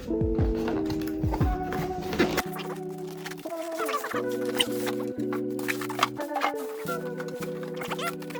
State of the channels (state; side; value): identical; both; correlation 1.00